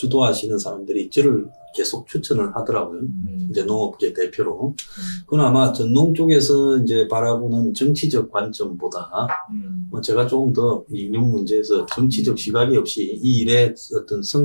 사람들이 저를 계속 추천을 하더라고요. 이제 농업계 대표로. 그건 아마 전농 쪽에서 이제 바라보는 정치적 관점보다 뭐 제가 조금 더 이 인용 문제에서 정치적 시각이 없이 이 일의 어떤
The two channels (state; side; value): inverted; both; correlation -1.00